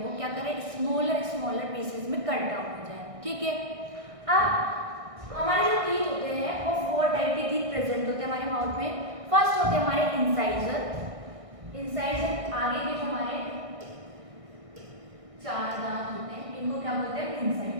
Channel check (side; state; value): left; late; 1.6 ms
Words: क्या करे, स्मॉलर स्मॉलर पीसेस में कट डाउन हो जाए। ठीक है, अब हमारे जो टीथ होते हैं वो 4 टाइप के टीथ प्रेजेंट होते हैं हमारे माउथ में। फर्स्ट होते हैं हमारे इंसाइजर। इंसाइजर आगे के जो हमारे 4 दांत होते हैं इनको क्या बोलते हैं,